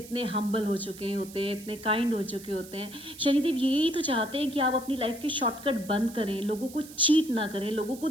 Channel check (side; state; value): right; noise; hiss, 17 dB below the sound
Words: हम्बल हो चुके होते हैं, इतने काइंड हो चुके होते हैं। शनिदेव यही तो चाहते हैं कि आप अपनी लाइफ के शॉर्टकट बंद करें, लोगों को चीट ना करें, लोगों को